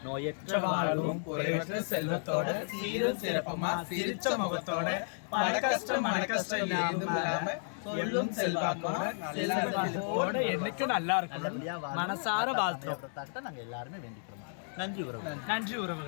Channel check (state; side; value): silent; right; digital silence